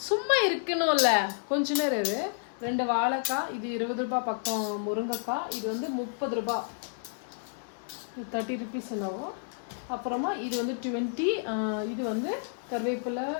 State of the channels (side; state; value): right; silent; 58 dB below the other